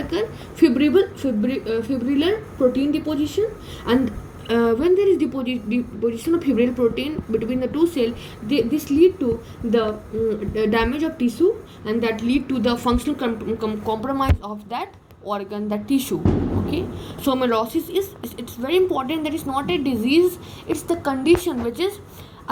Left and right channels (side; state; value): both; identical; correlation 1.00